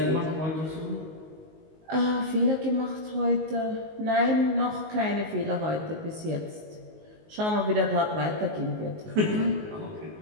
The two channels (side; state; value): left; late; 19 ms